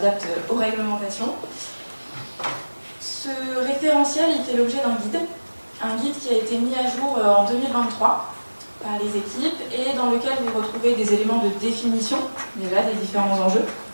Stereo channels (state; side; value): inverted; both; correlation -1.00